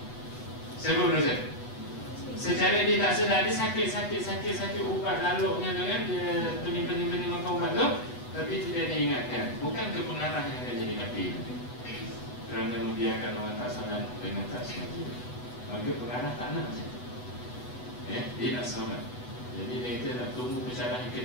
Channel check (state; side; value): late; right; 8.1 ms